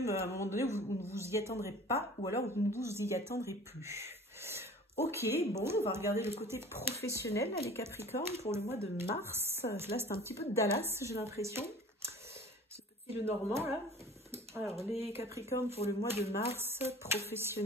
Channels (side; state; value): both; normal; correlation 0.44